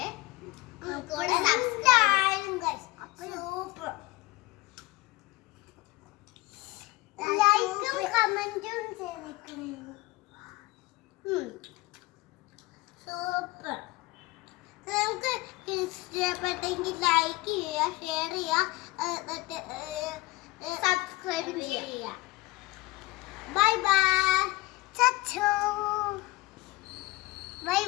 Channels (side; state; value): right; quieter; 20.7 dB